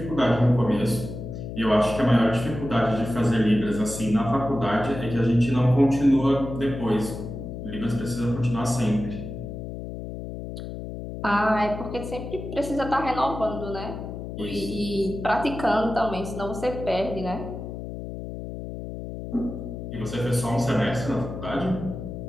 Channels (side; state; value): left; noise; hum, 8 dB below the sound